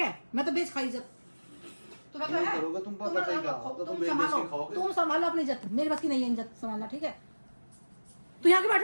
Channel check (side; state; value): both; inverted; correlation -1.00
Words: मैं तो बेच खाई इज्जत। तुम्हें क्या नहीं है? करोगे तुम पता चलेगा, अब तो तुम बेच संभालो, के खाओगे। तुम संभालो अपनी इज्जत, मेरी बस की नहीं है इज्जत संभालना, ठीक है? तू यहाँ के बैठ